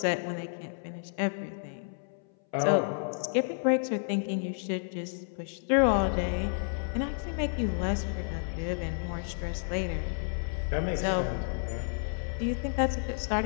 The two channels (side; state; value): right; silent; 57 dB below the other